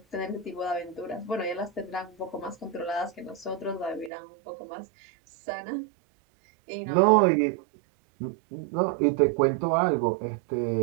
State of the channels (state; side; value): drops out; left; at 4.1 s